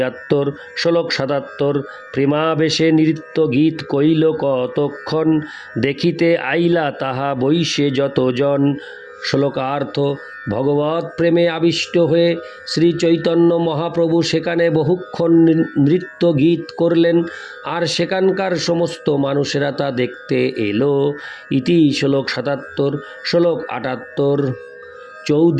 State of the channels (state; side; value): identical; both; correlation 1.00